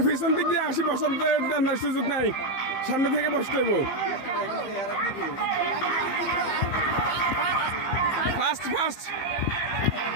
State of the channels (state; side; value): late; right; 15 ms